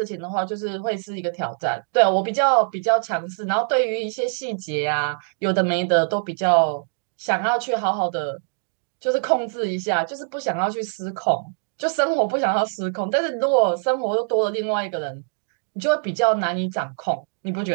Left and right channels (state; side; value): silent; left; digital silence